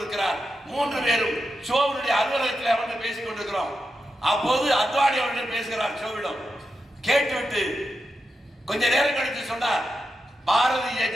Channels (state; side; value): normal; both; correlation 0.88